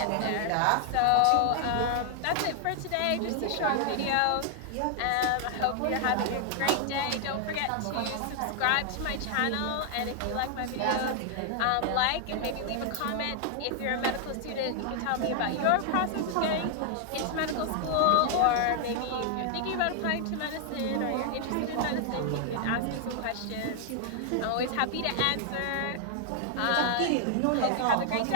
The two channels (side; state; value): both; different; correlation 0.00